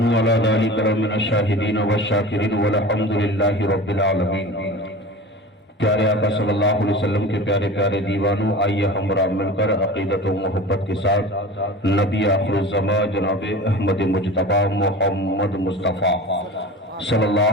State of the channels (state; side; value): normal; both; correlation 0.35